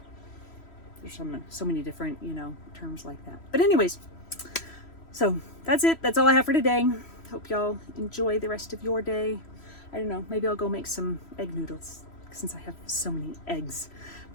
There's so many different, you know, terms like that. But anyways, so that's it. That's all I have for today. Hope y'all enjoy the rest of your day. I don't know, maybe I'll go make some egg noodles since I have so many eggs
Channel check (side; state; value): right; late; 3.1 ms